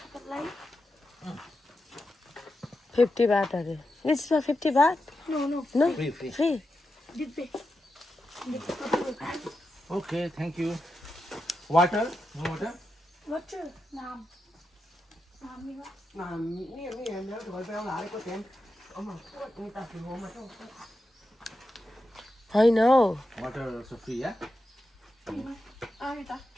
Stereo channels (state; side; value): normal; both; correlation 0.89